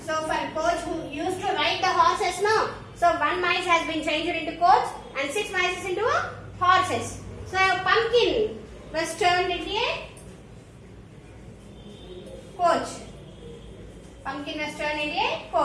So for coach who used to ride the horses, no. So 1 mice has been changed into coach and 6 mice into horses. So a pumpkin was turned into a coach.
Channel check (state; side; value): identical; both; correlation 1.00